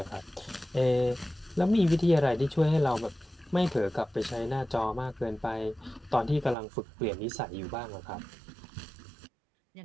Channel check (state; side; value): drops out; left; at 6.6 s